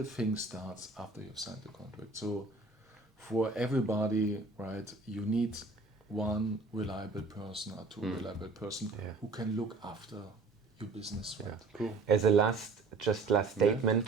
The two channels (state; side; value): quieter; left; 3.7 dB